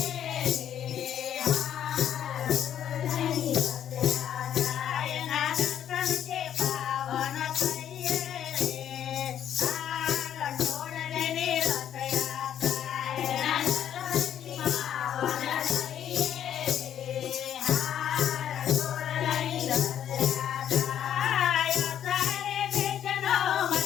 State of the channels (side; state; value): right; quieter; 10.0 dB